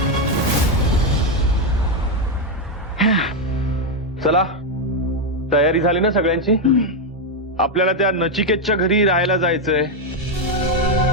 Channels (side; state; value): both; normal; correlation 0.04